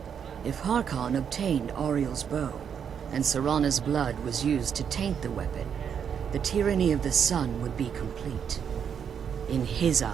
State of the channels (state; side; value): quieter; left; 7.7 dB